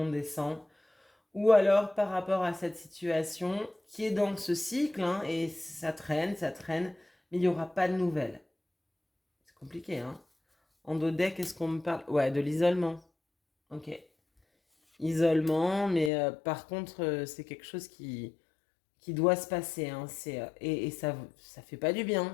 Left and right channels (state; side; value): drops out; right; at 16.1 s